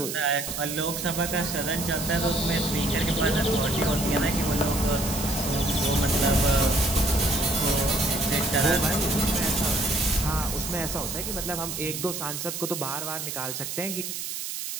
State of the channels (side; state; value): right; noise; hiss, 5 dB below the sound